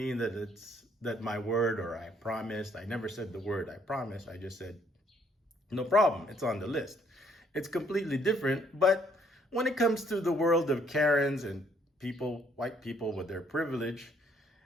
that it's that my word or I promised. I never said the word I promised. I just said, no problem, it's on the list. It's completely different, but when it comes to the world of Karens and people, white people with their privilege,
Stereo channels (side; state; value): both; normal; correlation 0.66